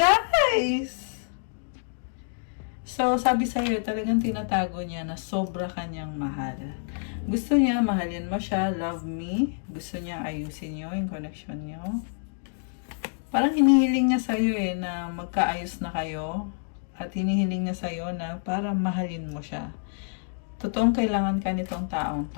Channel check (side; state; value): right; silent; digital silence